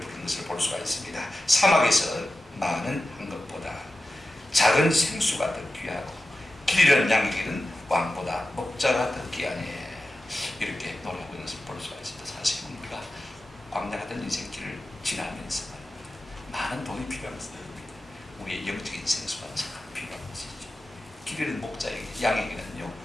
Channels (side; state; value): both; normal; correlation 0.94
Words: 것을 볼 수가 있습니다. 사막에서 많은 한 것보다 작은 생수가 더 귀하고 길 잃은 양에게는 왕보다 목자가 더 귀하네, 이렇게 노래하고 있는 것을 볼 수가 있습니다. 사실은 우리가 광야 같은 인생길을 지나면서 많은 돈이 필요한 것입니다. 우리의 영적인 생수가 참 필요한 것이죠. 길 잃은 목자에게, 양에게는요,